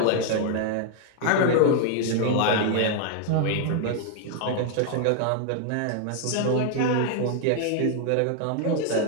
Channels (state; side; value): different; both; correlation 0.00